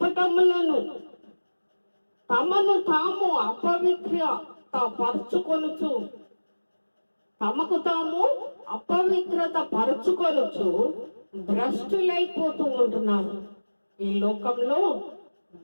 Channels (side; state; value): both; inverted; correlation -1.00